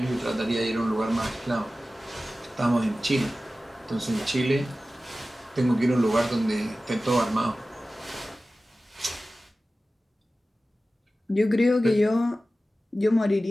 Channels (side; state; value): both; normal; correlation 0.95